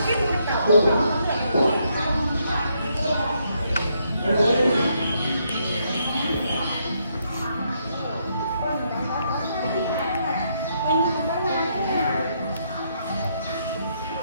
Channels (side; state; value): both; inverted; correlation -0.75